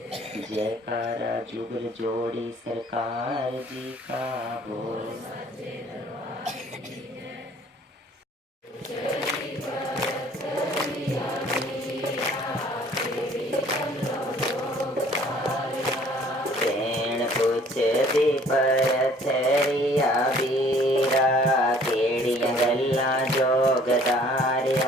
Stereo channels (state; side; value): normal; both; correlation 0.56